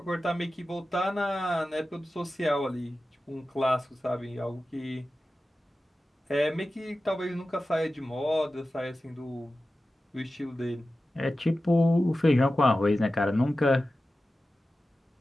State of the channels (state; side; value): normal; both; correlation 0.94